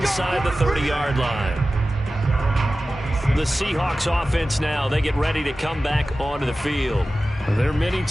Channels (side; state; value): both; normal; correlation 0.95